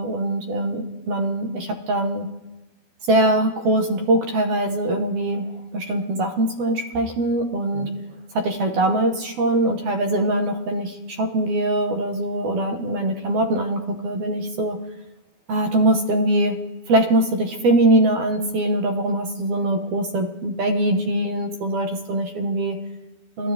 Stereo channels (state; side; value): late; left; 12 ms